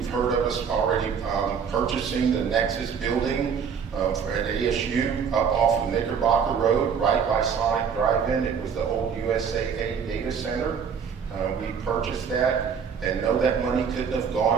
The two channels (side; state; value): left; quieter; 6.7 dB